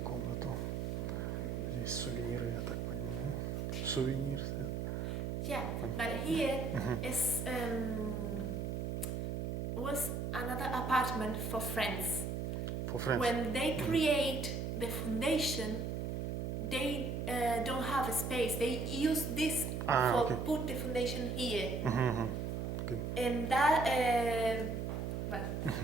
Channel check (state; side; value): noise; right; hum, 2 dB below the sound